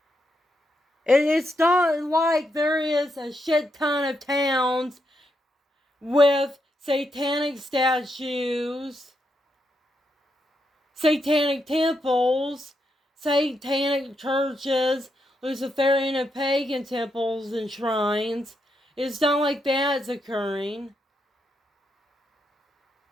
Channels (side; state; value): both; normal; correlation 0.82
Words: It's not like there is a shit ton of towns with satanic statues, satanic temples, satanic churches, Luciferian and pagan temples and shrines. It's not like that's occurring.